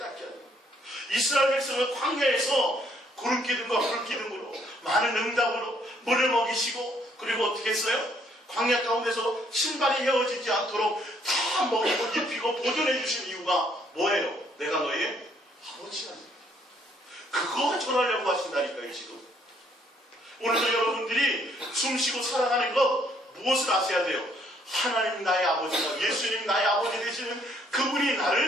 하는 거예요. 이스라엘 백성은 광야에서 구름 기둥과 불 기둥으로 많은 응답으로 물을 먹이시고, 그리고 어떻게 했어요? 광야 가운데서 신발이 헤어지지 않도록 다 먹이고 입히고 보존해 주신 이유가 뭐예요? 내가 너의 아버지라는 거예요. 그거 전하려고 하신다니까요. 지금 오늘도 여러분들이 숨쉬고 살아가는 것 무엇을 아셔야 돼요? 하나님 나의 아버지가, 예수님 나의 아버지 되시는 그분이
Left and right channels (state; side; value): normal; both; correlation 0.67